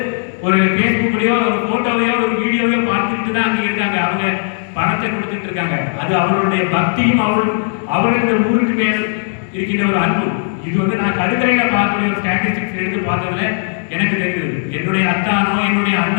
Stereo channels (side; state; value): right; silent; digital silence